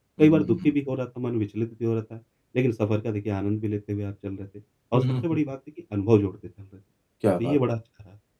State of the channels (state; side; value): identical; both; correlation 1.00